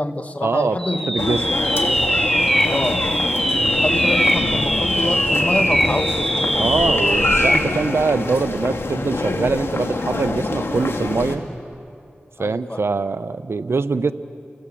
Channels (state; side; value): normal; both; correlation 0.87